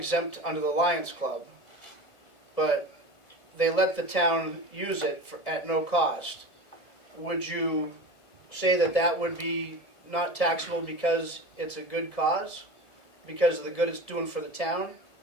under the Lions Club, but they let the town use it at no cost. Would you say that would be not taxable because it's a good cause? Because of the good it's doing for the town?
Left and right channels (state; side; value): late; right; 1.4 ms